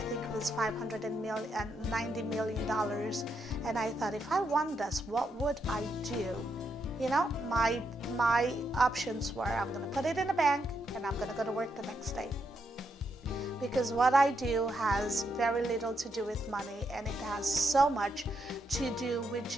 think it was $590 million, and I thought, if I won this, what would I do? My options were, I'm going to put it in a bank and I'm going to go to work the next day. Because what I do has very little to do with money, and it has so much to do with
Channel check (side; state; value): both; normal; correlation 0.80